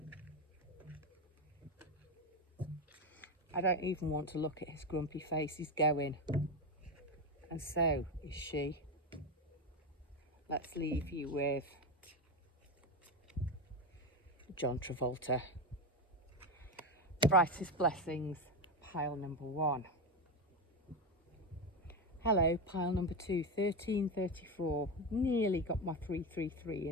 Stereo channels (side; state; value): both; normal; correlation 0.14